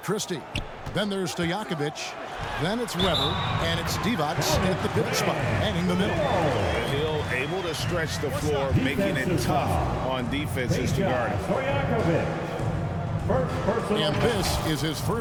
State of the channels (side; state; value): both; identical; correlation 1.00